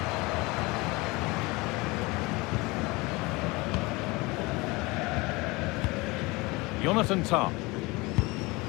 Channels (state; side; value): quieter; right; 24.0 dB